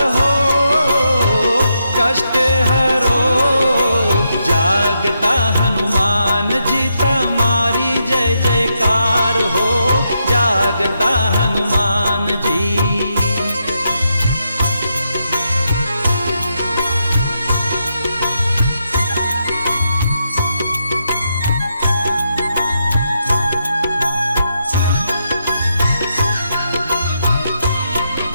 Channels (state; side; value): inverted; both; correlation -0.82